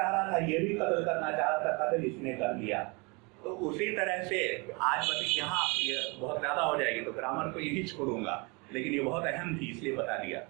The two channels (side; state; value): left; quieter; 29.2 dB